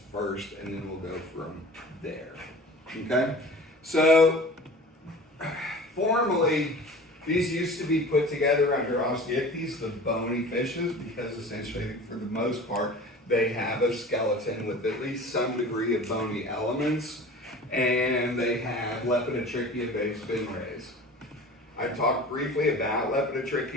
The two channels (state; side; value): normal; both; correlation 0.40